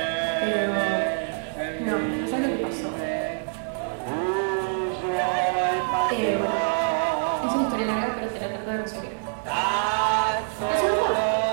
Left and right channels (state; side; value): silent; left; 61 dB below the other